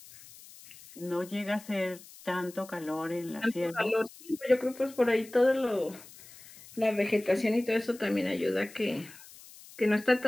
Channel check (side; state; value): left; noise; hiss, 20 dB below the sound